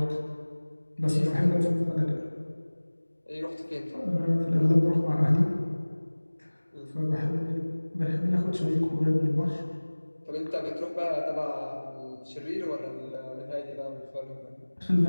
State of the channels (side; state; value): both; inverted; correlation -1.00